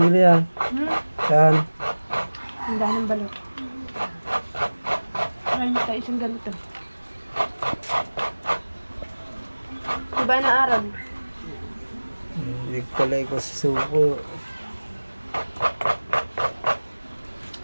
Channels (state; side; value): inverted; both; correlation -1.00